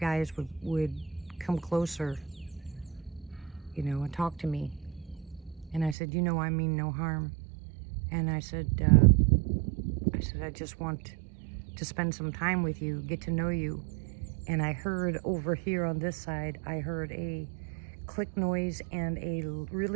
would come closer, you know, and talk to me. And I said, you know, I mean no harm. And I said, I just want to spend some time with you, get to know you. And I heard over here on this side, I heard a click noise and a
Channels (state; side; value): drops out; left; at 6.0 s